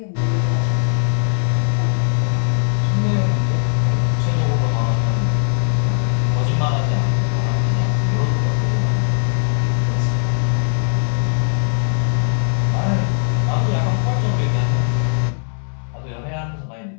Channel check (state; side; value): silent; right; 67 dB below the other